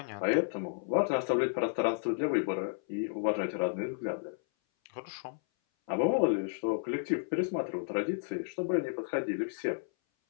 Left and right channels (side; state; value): right; silent; 56 dB below the other